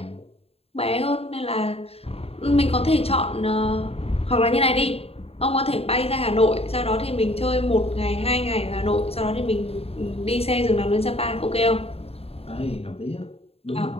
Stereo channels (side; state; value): right; late; 0.29 ms